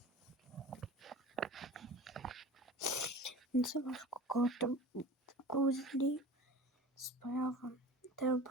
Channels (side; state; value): both; normal; correlation 0.38